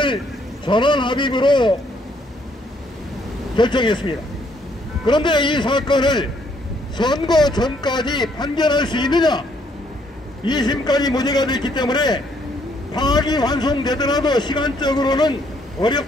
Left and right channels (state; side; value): normal; both; correlation 0.68